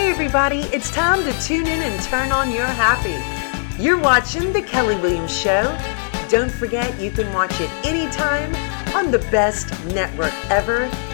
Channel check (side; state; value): right; silent; 66 dB below the other